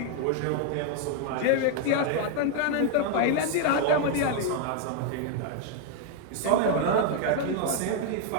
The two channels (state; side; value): different; both; correlation 0.00